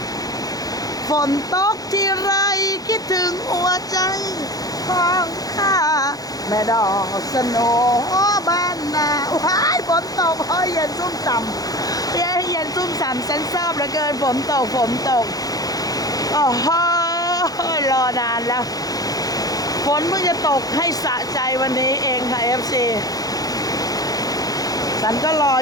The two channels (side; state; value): right; late; 0.18 ms